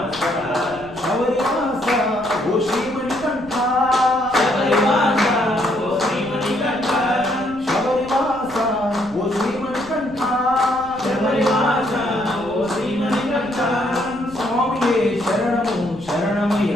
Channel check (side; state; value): left; noise; rumble, 21 dB below the sound